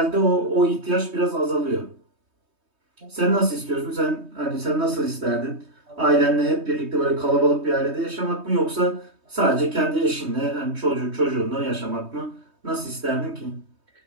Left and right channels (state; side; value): late; left; 3.2 ms